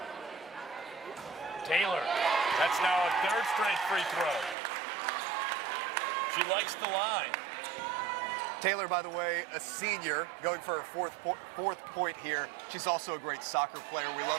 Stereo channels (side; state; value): left; drops out; at 4.5 s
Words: Taylor, that's now a 3rd straight free throw. She likes the line. Taylor, by the way, a senior, going for her fourth point here. She's also a great soccer player. We